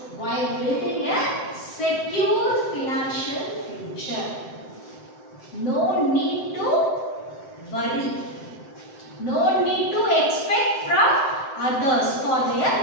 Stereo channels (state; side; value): late; right; 7.7 ms